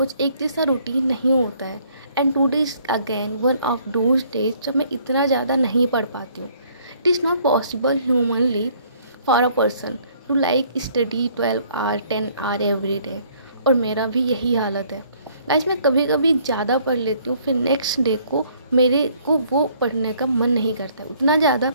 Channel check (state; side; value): inverted; both; correlation -0.62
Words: एक जैसा रूटीन नहीं होता है। And today is again one of those days जब मैं इतना ज़्यादा नहीं पढ़ पाती हूँ। It is not possible humanly for a person to like study 12 hour 10 hour every day. और मेरा भी यही हालत है गाइस। मैं कभी कभी ज़्यादा पढ़ लेती हूँ, फिर नेक्स्ट डे को मेरे को वो पढ़ने का मन नहीं करता है, उतना ज़्यादा